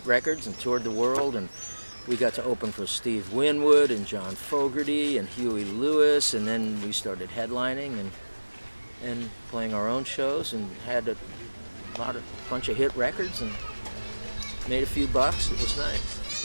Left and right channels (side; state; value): both; inverted; correlation -1.00